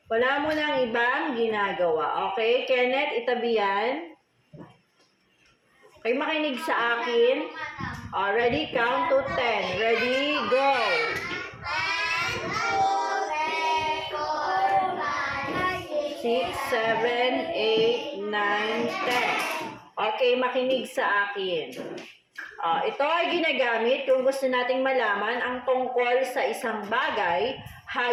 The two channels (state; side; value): identical; both; correlation 1.00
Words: Wala mo nang ibang ginagawa. Okay? Kenneth, itabi yan. Okay, makinig sa akin. Ready? Count to 10. Ready? Go! 6, 7, 8, 9, 10. Okay, makinig sa akin. Ito ay ginagamit kung gusto nating malaman ang tungkol sa isang bagay,